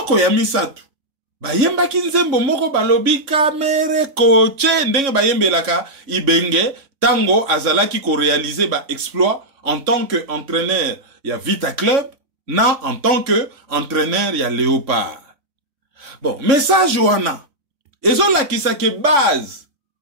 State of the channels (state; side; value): late; left; 3.9 ms